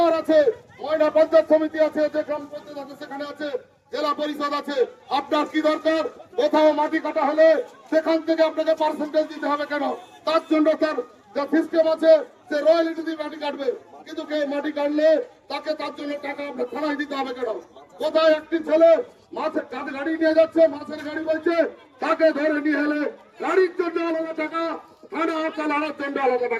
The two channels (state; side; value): identical; both; correlation 1.00